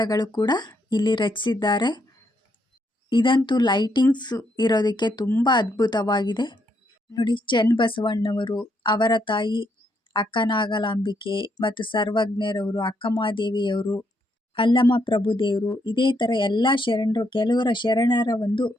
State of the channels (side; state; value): both; normal; correlation 0.76